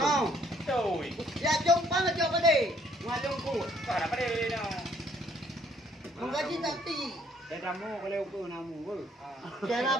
Coi. Ya Pompang ngacak pada. Ngalung ku. Mana pada ni no. Menggaji tadi. Để ra mua cái leo cưa nào mua Cara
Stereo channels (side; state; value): both; normal; correlation 0.64